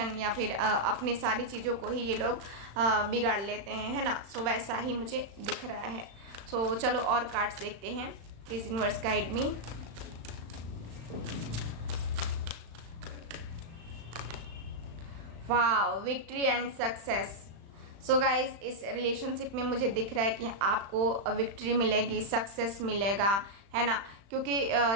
या फिर अपनी सारी चीज़ों को ही ये लोग बिगाड़ लेते हैं, है ना। सो वैसा ही मुझे दिख रहा है। सो चलो और कार्ड्स देखते हैं। Please universe guide me. Wow, victory and success. So guys इस रिलेशनशिप में मुझे दिख रहा है कि आपको विक्ट्री मिलेगी, सक्सेस मिलेगा, है ना। क्योंकि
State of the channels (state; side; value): late; left; 35 ms